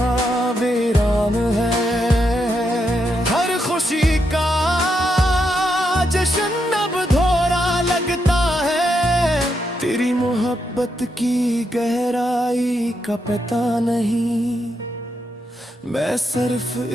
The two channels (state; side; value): normal; both; correlation 0.81